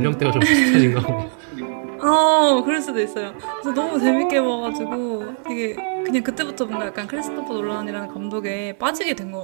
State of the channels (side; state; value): left; silent; digital silence